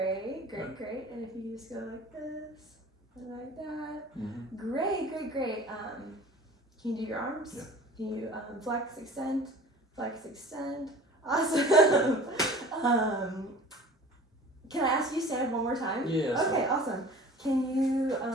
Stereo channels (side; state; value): both; normal; correlation 0.42